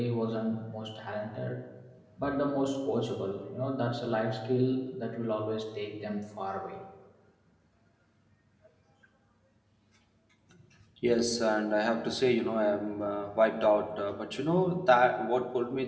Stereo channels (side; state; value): both; identical; correlation 1.00